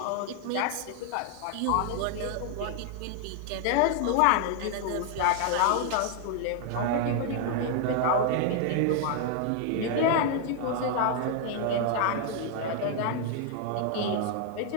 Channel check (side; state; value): both; different; correlation 0.00